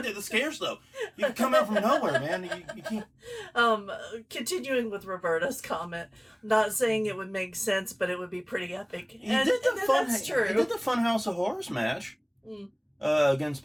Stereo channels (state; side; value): identical; both; correlation 1.00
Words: at the scares, though. You can come out from nowhere, man. You can't. Continuing with Roberta's comment, not saying it would make sense, but it would be pretty epic. That's true. He did the Funhouse of Horrors match against